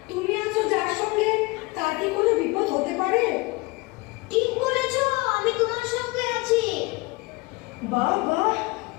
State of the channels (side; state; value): right; quieter; 24.2 dB